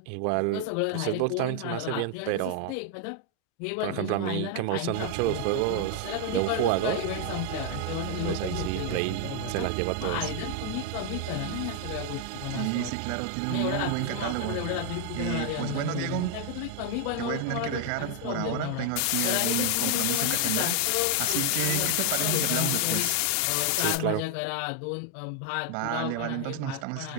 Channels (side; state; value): both; different; correlation 0.00